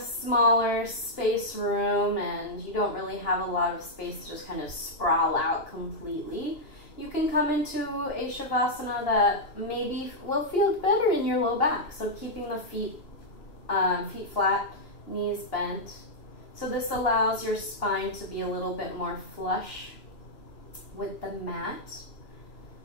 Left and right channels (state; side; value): late; right; 2.9 ms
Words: space room and you don't really have a lot of space to just kind of sprawl out completely, you can come into a Shavasana that maybe will feel better in your low back. So keeping the feet flat, knees bent. So this allows your spine to be a little bit more flush with the mat.